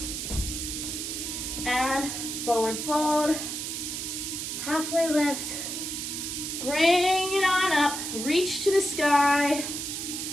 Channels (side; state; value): right; noise; hiss, 4 dB below the sound